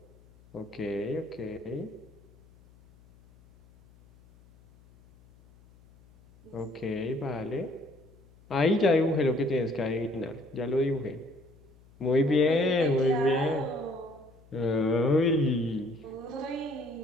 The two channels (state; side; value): noise; left; hum, 27 dB below the sound